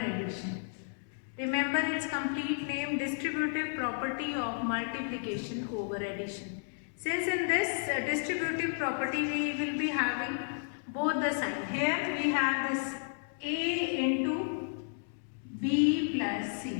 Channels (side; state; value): right; silent; digital silence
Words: Remember its complete name, distributive property of multiplication over addition. Since in this distributive property we will be having both the sign. Here we have this A into B plus